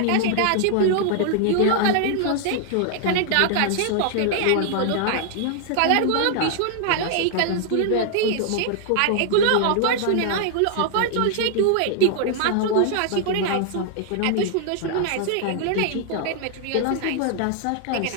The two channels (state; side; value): different; both; correlation 0.00